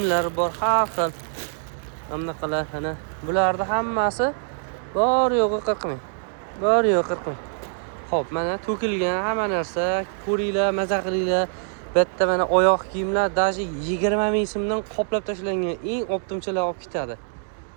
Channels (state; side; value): silent; left; digital silence